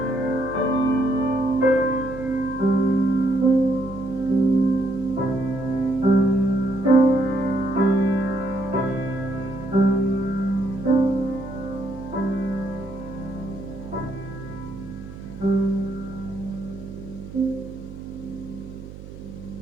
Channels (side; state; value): right; noise; hum, 15 dB below the sound